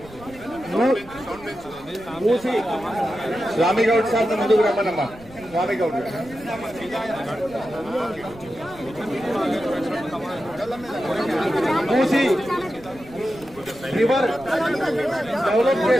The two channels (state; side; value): noise; right; rumble, 21 dB below the sound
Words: స్వామి గౌడ్ సార్ ముందుకు రమ్మనమ్మా. స్వామి గౌడ్ మూసి రివర్ డెవలప్